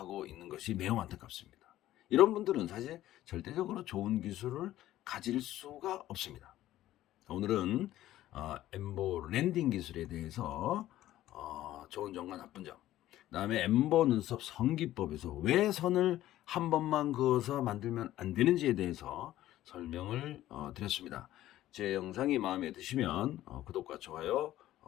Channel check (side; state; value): right; quieter; 14.1 dB